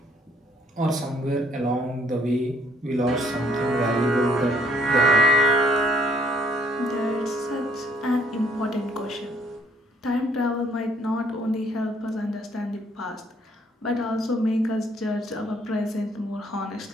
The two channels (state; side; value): normal; both; correlation 0.64